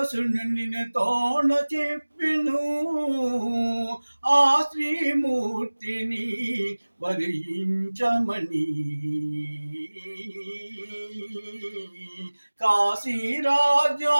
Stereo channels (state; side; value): inverted; both; correlation -1.00